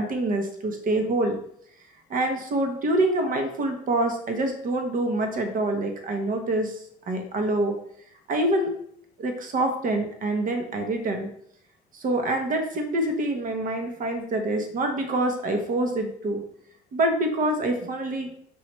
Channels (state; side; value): normal; both; correlation 0.33